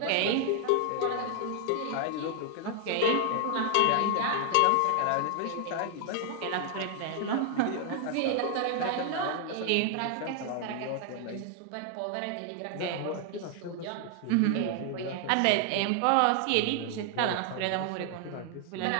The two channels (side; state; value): both; different; correlation 0.00